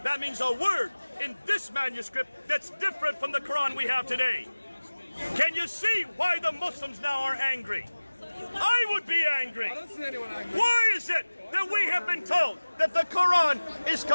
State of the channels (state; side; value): inverted; both; correlation -1.00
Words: That means a word in this manuscript that's different from the Quran we have today. Can you see why the Muslims now are angry? I would be angry. I don't see anyone angry. Why is it that we have been told that the Quran is